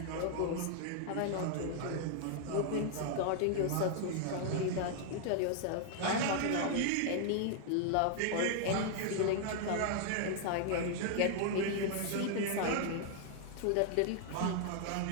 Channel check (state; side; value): different; both; correlation 0.00